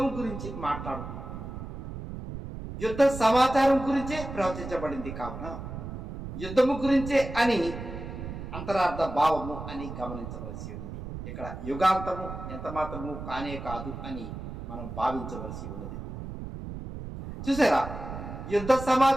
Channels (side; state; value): right; noise; rumble, 9 dB below the sound